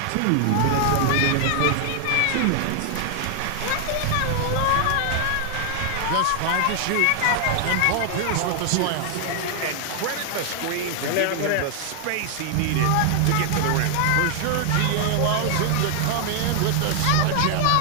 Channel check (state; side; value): different; both; correlation 0.00